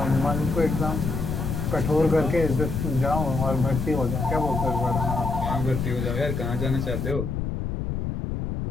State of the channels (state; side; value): noise; left; rumble, 3 dB below the sound